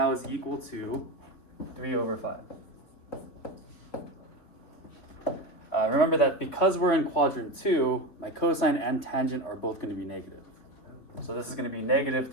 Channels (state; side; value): late; right; 3.9 ms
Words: is equal to 3 over 5. Remember that because we're in quadrant 2, my cosine and tangent are both going to be negative. So this is going to be negative